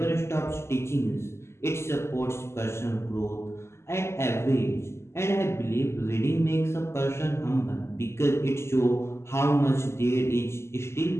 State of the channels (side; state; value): right; late; 0.13 ms